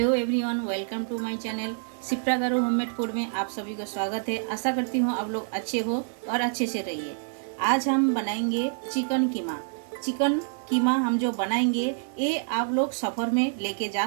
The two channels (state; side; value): silent; left; 60 dB below the other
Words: everyone, welcome to my channel Shipra garu homemade food में आप सभी का स्वागत है। आशा करती हूँ आप लोग अच्छे हो और अच्छे से रहिए। आज हम बनाएंगे चिकन कीमा। चिकन कीमा हम जो बनाएंगे ये आप लोग सफ़र में लेके जा